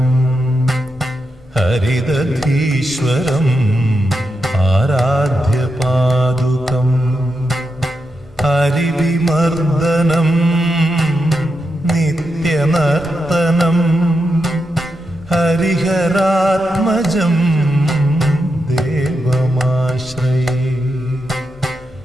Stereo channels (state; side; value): normal; both; correlation 0.86